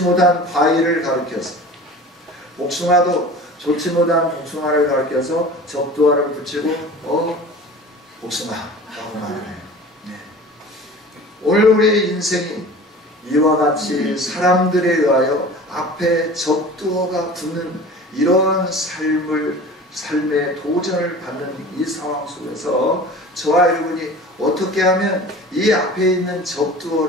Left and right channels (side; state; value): both; normal; correlation 0.39